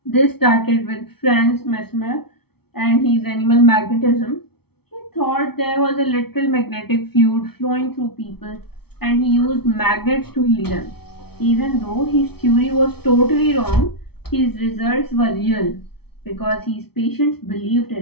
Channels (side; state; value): right; late; 0.96 ms